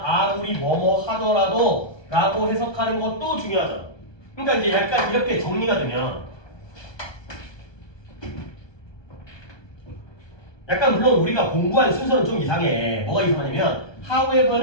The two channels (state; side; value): late; right; 1.2 ms